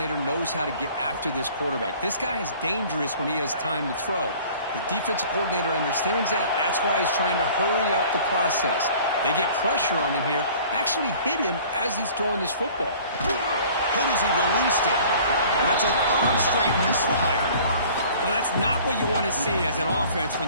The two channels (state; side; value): inverted; both; correlation -0.49